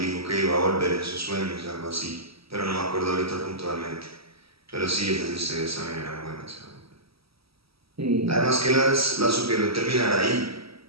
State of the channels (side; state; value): left; late; 0.76 ms